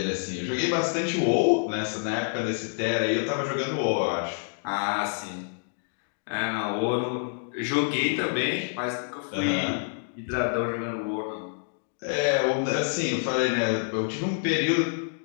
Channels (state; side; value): silent; right; digital silence